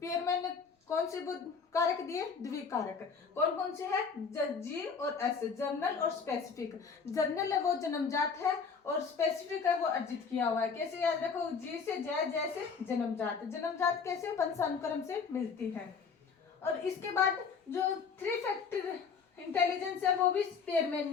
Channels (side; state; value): right; quieter; 5.6 dB